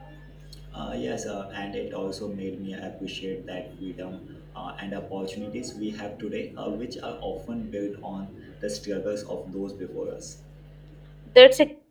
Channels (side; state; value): both; identical; correlation 1.00